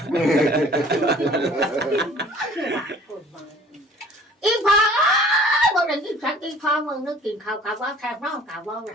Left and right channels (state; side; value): normal; both; correlation 0.51